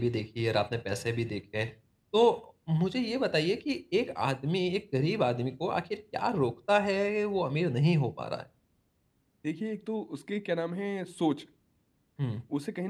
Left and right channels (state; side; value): identical; both; correlation 1.00